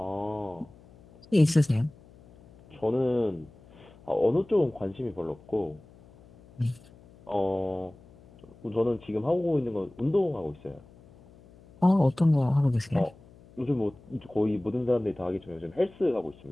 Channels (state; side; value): noise; left; hum, 24 dB below the sound